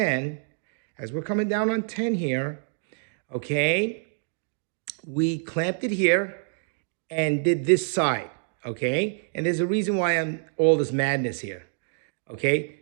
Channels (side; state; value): left; silent; digital silence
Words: as we're coming down on 10 here, okay, we clamped it here and did this side, okay? And there's a reason why I'm all this madness here, okay?